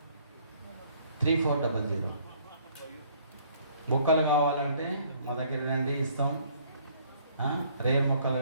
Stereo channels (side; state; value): both; inverted; correlation -0.61